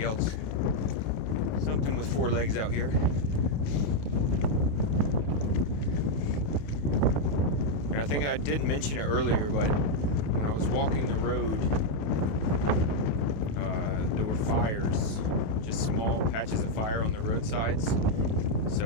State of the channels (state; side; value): late; right; 28 ms